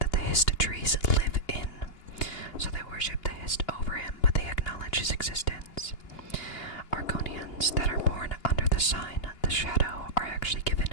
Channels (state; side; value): late; right; 2.8 ms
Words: the Hist trees live in. So they worship the Hist over him, but they acknowledge his existence. Argonians that are born under the sign, the Shadow, are actually given